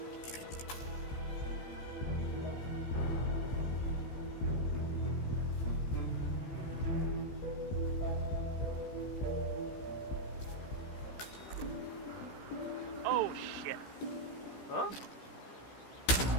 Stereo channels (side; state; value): right; late; 15 ms